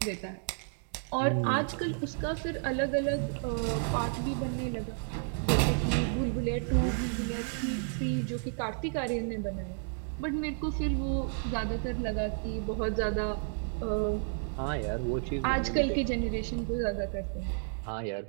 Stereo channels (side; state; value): left; silent; 57 dB below the other